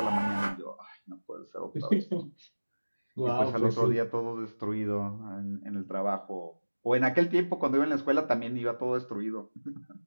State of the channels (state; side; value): inverted; both; correlation -1.00